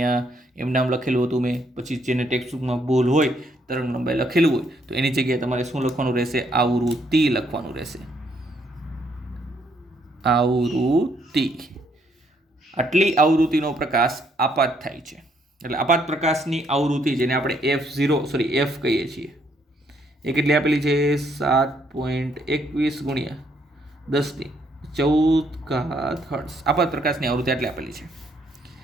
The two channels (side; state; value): both; normal; correlation 0.71